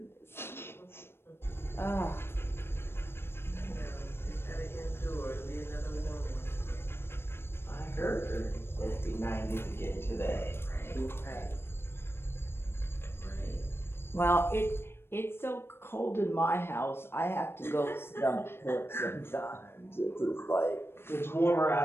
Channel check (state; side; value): late; right; 0.12 ms